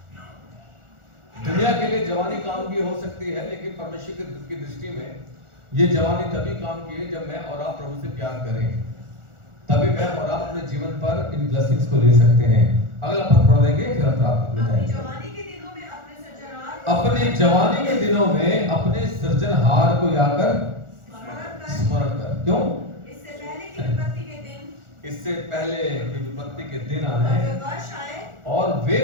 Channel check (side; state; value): left; late; 1.4 ms